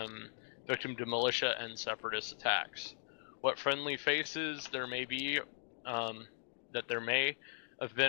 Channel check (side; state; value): right; silent; digital silence